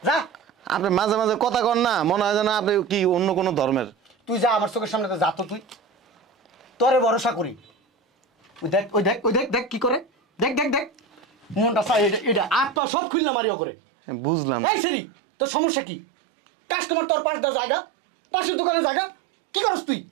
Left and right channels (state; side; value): drops out; left; at 12.8 s